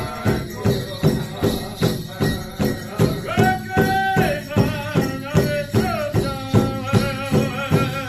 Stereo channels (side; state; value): both; identical; correlation 1.00